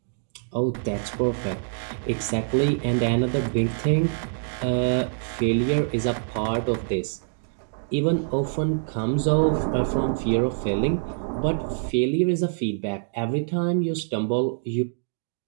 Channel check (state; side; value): silent; left; digital silence